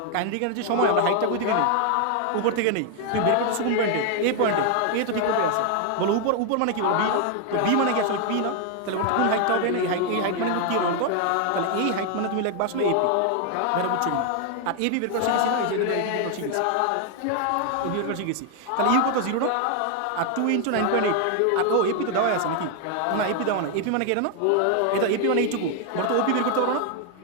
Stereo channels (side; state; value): both; different; correlation 0.00